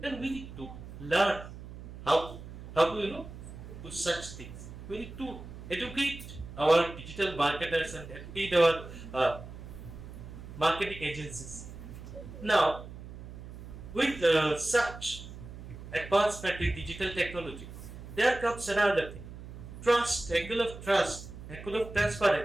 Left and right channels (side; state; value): right; noise; hum, 13 dB below the sound